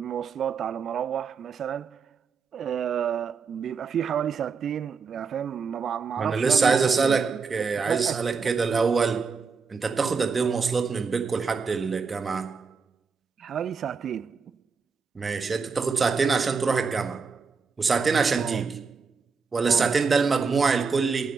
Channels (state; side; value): quieter; left; 5.2 dB